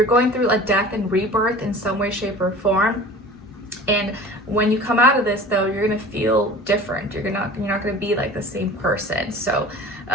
going through a death and rebirth in some way, shape, or form. And when you come out of this, though, you're gonna feel different. You're not gonna be like the same person. So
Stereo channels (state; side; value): normal; both; correlation 0.41